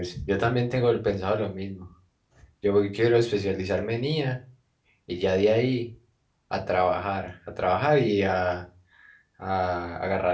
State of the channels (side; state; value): both; identical; correlation 1.00